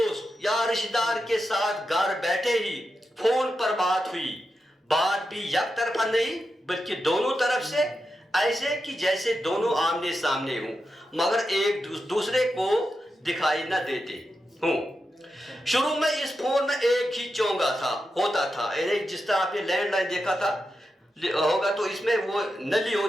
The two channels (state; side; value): normal; both; correlation 0.88